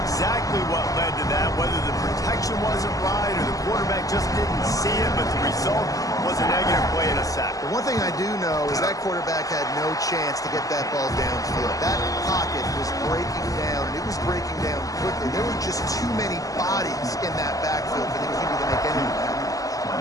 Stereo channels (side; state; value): right; late; 0.17 ms